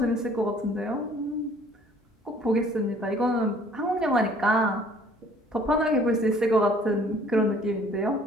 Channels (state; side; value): normal; both; correlation 0.56